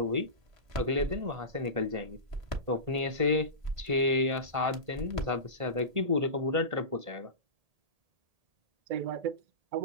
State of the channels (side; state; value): left; late; 1.8 ms